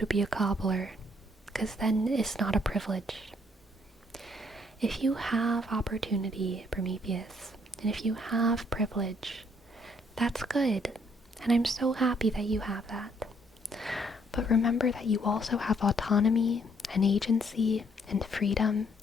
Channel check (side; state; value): both; normal; correlation 0.67